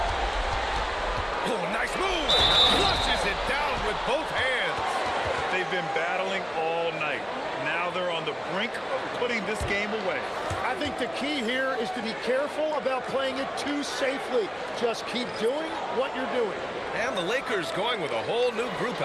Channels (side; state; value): both; identical; correlation 1.00